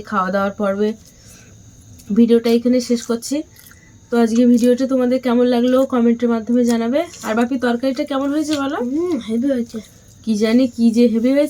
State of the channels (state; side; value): identical; both; correlation 1.00